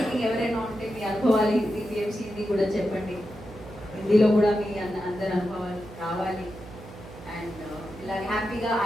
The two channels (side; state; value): right; noise; hum, 16 dB below the sound